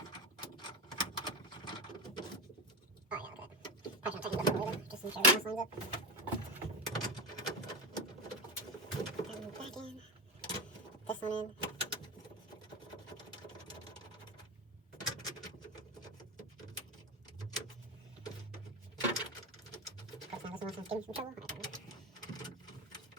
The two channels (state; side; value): normal; both; correlation 0.17